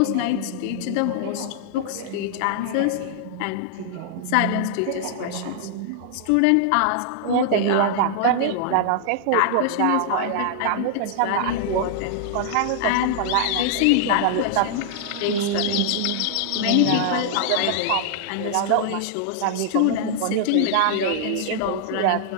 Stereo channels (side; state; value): both; different; correlation -0.01